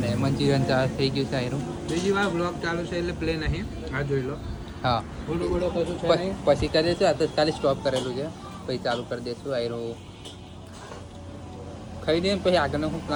મંચુરિયન થઈ ગયું છે આયરું. બીજી વાર બ્લોગ ચાલુ છે એટલે પ્લે નહીં. આ જોઈ લો. હા બોલો બોલો કશું છે નહીં. પછી કરી દઈશું. આ તો ખાલી સ્ટોપ કરેલું છે, પછી ચાલુ કરી દઈશું. આયરું ખાઈ દઈએ પછી આગળનો હું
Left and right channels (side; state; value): both; identical; correlation 1.00